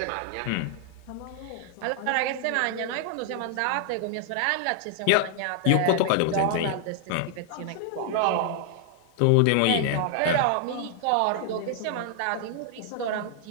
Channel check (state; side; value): different; both; correlation 0.00